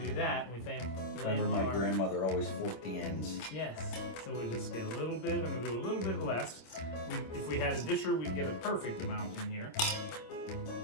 do that. We lay Remember them my on grandmother always forked the ends. Yes. So we just get a little bit. I'm going to do a little bit less. If we had a disher, we'd get a perfect amount in here.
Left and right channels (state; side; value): late; right; 26 ms